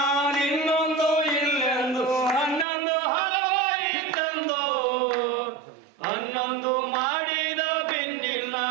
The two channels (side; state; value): left; drops out; at 2.7 s